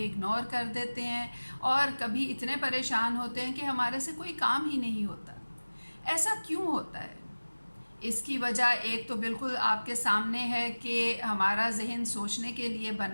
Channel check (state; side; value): inverted; both; correlation -1.00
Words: इग्नोर कर देते हैं और कभी इतने परेशान होते हैं कि हमारे से कोई काम ही नहीं होता। ऐसा क्यों होता है? इसकी वजह एक तो बिल्कुल आपके सामने है कि हमारा जहन सोचने के लिए